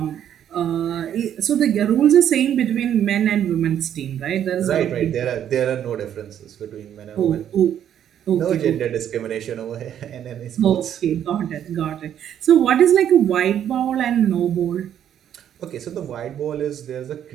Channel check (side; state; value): left; quieter; 10.0 dB